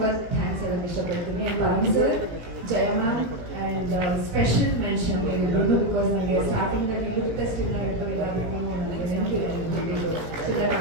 ಥ್ಯಾಂಕ್ಸ್ ಹೇಳಕ್ ಇಷ್ಟಪಡ್ತೀನಿ. Sir, Jaya ma'am and special mention ನೀವು, ಬಿಕಾಸ್ ನನಗೆ ಸ್ಟಾರ್ಟಿಂಗ್ ಅಲ್ಲಿ ಲುಕ್ ಟೆಸ್ಟ್ ಇದ್ದು ಇದಾಗೂ ನನಗೆ ನೆನಪಿಲ್ಲ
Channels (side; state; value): left; late; 17 ms